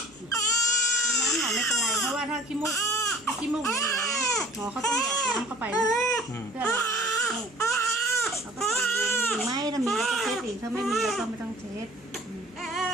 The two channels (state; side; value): normal; both; correlation 0.48